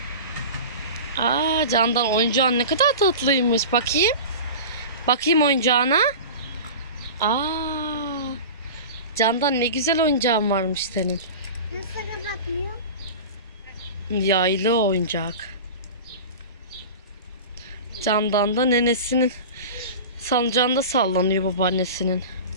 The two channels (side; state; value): both; inverted; correlation -0.32